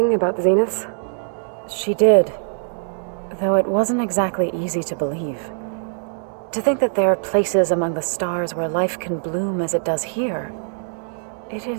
about the Zeniths? She did, though it wasn't exactly easy to believe. To think that there are places among the stars where life can bloom as it does here, it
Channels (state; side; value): silent; left; 64 dB below the other